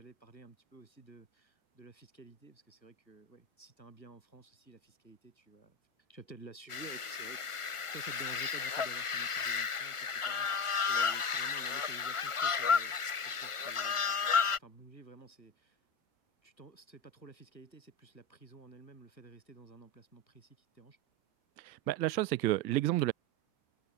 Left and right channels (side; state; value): right; late; 1.4 ms